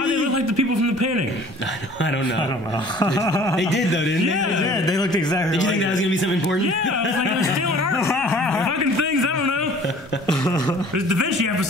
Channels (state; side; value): normal; both; correlation 0.50